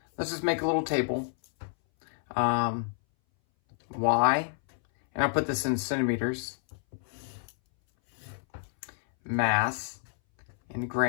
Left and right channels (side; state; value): right; silent; 59 dB below the other